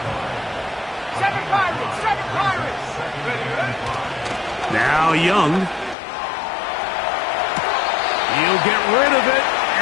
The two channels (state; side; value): drops out; right; at 6.0 s